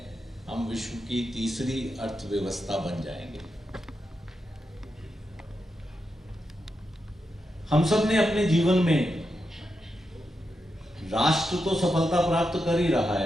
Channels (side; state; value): both; normal; correlation 0.86